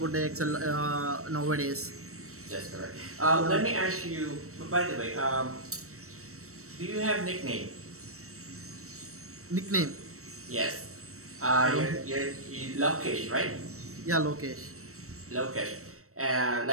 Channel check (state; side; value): late; left; 0.64 ms